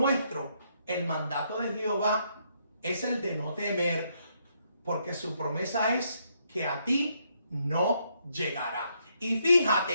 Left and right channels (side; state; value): both; inverted; correlation -0.74